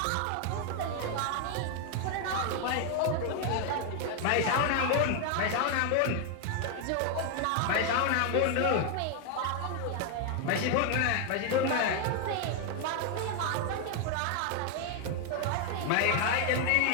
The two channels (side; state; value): both; different; correlation 0.00